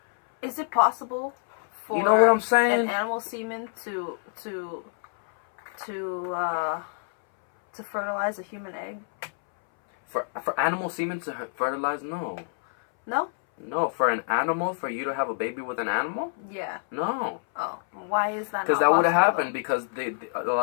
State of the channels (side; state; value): right; silent; 60 dB below the other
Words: Is it possible for you know what I'm saying? an animal semen to fertilize a human egg? For animal semen to fertilize? No. No? No, for an animal, for you to have a baby with an animal? Yeah. No. Oh, why is that? Because that would have happened because a